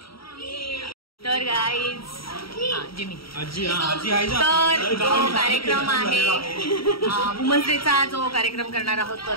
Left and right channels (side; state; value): right; late; 0.75 ms